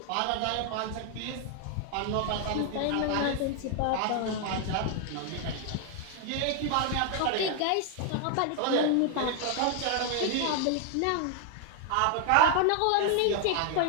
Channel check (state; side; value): different; both; correlation 0.00